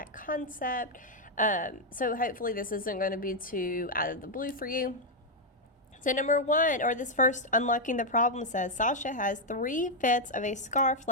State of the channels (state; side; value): normal; both; correlation -0.01